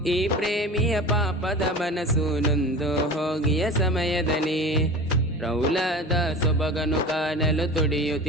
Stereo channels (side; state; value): both; normal; correlation 0.35